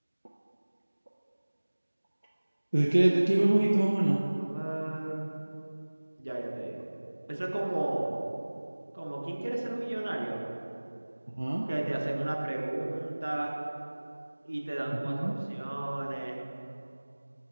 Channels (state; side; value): inverted; both; correlation -1.00